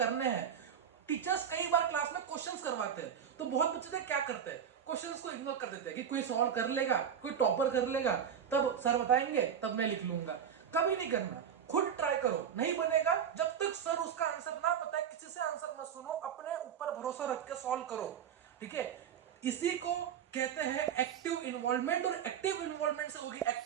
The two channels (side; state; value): left; quieter; 8.3 dB